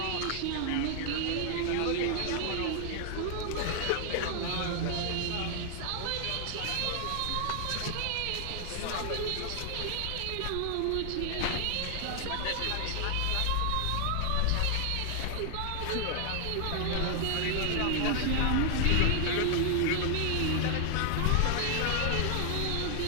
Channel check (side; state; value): both; different; correlation 0.00